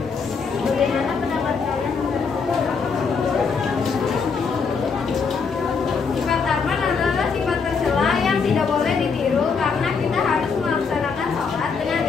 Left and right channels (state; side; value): quieter; right; 5.4 dB